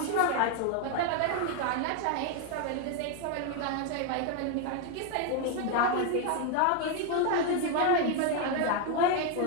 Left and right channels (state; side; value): different; both; correlation 0.01